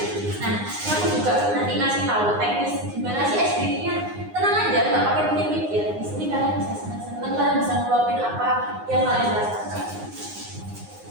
Nah, ini aku juga nanti ngasih tahu teknis gimana sih SPT-nya. Tenang aja, nggak pakai pikir-pikir. Di sini kalian bisa senang-senang, kalian bisa ngeluapin apa yang kalian rasakan.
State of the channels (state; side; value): late; left; 9.6 ms